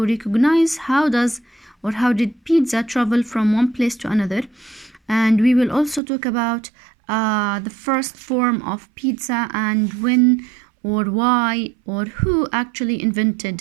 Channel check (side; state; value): left; drops out; at 6.0 s